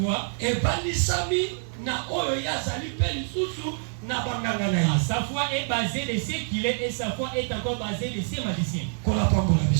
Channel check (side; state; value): left; silent; 61 dB below the other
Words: Sa foi est basée de ce qu'il est et sa foi est encore basée de ses magiciens. Que